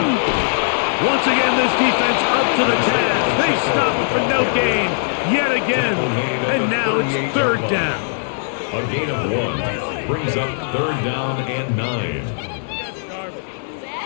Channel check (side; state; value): right; silent; 57 dB below the other